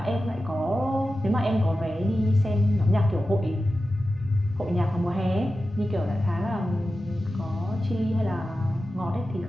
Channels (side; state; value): both; normal; correlation 0.93